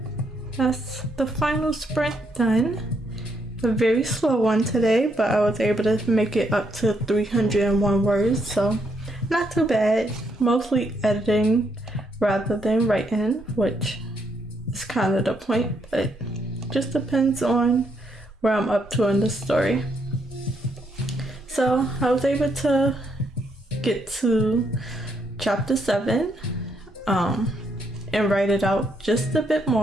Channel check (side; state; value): both; normal; correlation 0.75